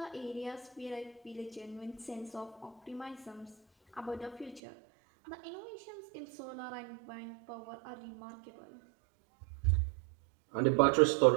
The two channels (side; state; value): left; drops out; at 4.6 s